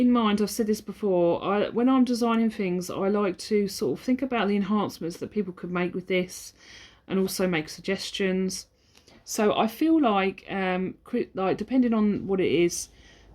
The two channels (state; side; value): identical; both; correlation 1.00